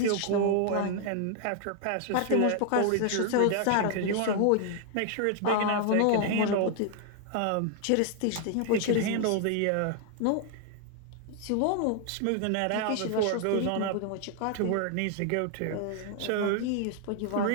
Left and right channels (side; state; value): both; different; correlation 0.00